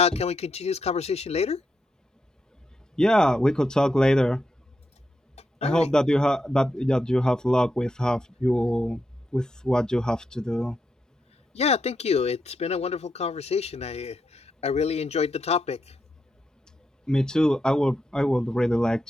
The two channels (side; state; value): both; normal; correlation 0.83